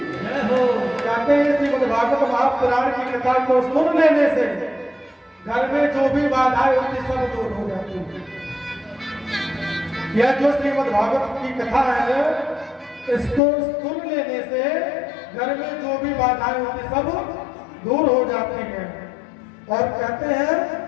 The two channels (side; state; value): right; drops out; at 13.4 s